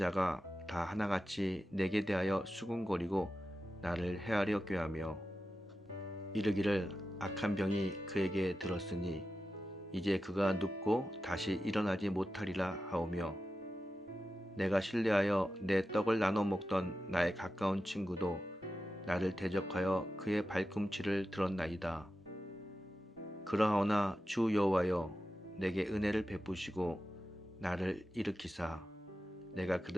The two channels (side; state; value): both; normal; correlation 0.92